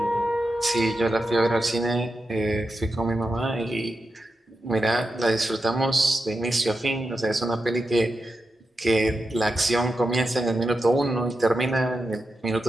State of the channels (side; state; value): both; normal; correlation 0.89